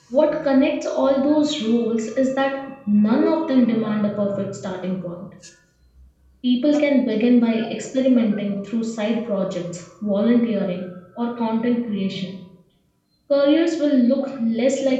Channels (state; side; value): identical; both; correlation 1.00